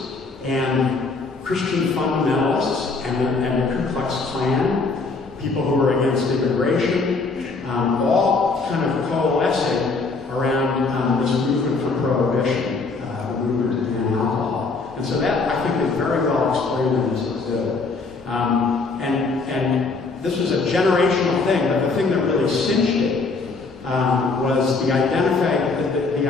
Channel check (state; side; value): quieter; right; 4.0 dB